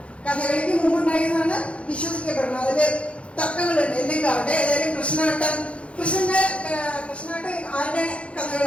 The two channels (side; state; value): right; late; 0.061 ms